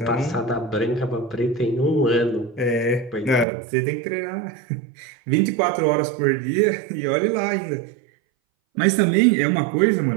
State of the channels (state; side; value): drops out; left; at 3.5 s